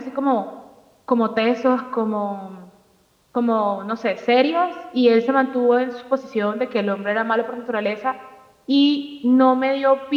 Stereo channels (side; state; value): both; identical; correlation 1.00